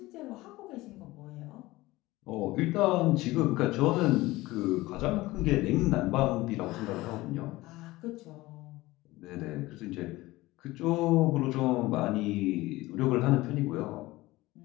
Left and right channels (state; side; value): quieter; right; 19.1 dB